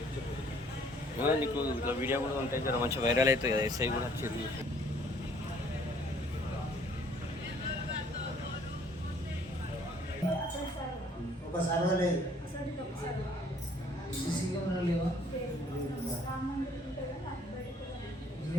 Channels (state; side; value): normal; both; correlation 0.59